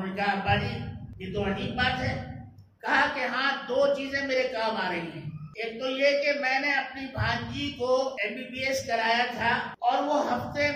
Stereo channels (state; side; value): identical; both; correlation 1.00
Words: نے کہا ابا جی یہ تو عجیب بات ہے۔ کہا کہ ہاں 2 چیزیں میرے کام آ رہی ہیں۔ ایک تو یہ کہ میں نے اپنی بھانجی کو MBBS کرایا تھا اور وہ ہفتے